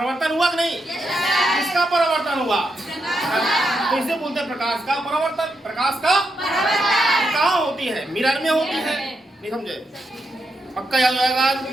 हुआ कि नहीं? किसका परिवर्तन हुआ? तो इसे बोलते हैं प्रकाश का परिवर्तन। प्रकाश का कहाँ होती है? मिरर में होती है। नहीं समझे? पक्का याद आएगा?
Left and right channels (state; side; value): normal; both; correlation 0.83